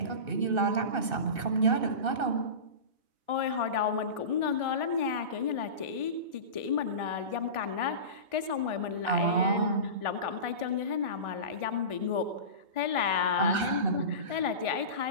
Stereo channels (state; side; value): late; left; 2.6 ms